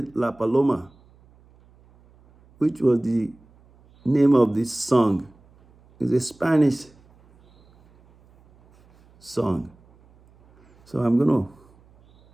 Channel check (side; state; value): right; noise; hum, 30 dB below the sound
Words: La Paloma, which was the name of this song. It's a Spanish song. So I'm